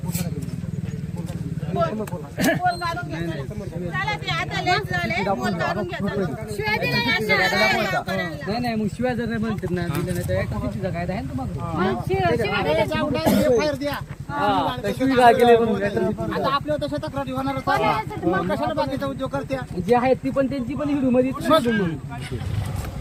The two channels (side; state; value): both; identical; correlation 1.00